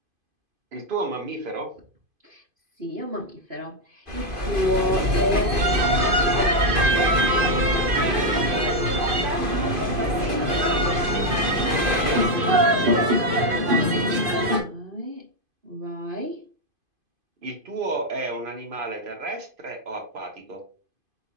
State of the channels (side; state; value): left; late; 2.5 ms